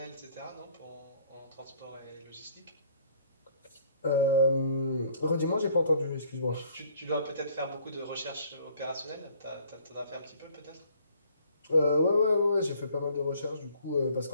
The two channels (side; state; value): both; inverted; correlation -0.58